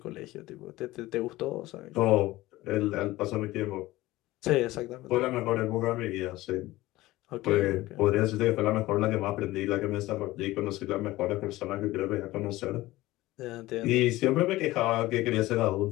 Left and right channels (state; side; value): quieter; right; 17.9 dB